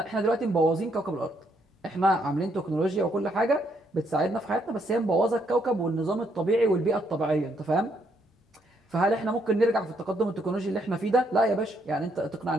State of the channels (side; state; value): both; normal; correlation 0.73